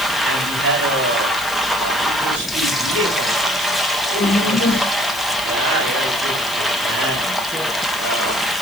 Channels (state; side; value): noise; left; hiss, 11 dB below the sound